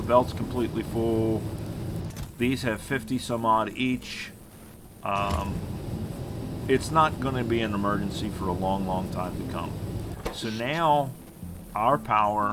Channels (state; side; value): identical; both; correlation 1.00